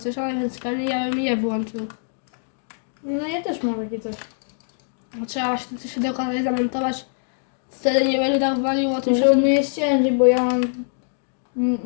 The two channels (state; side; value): silent; right; digital silence